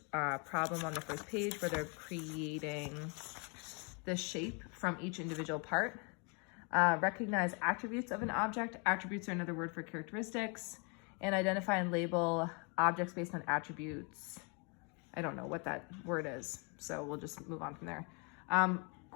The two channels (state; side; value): quieter; right; 34.3 dB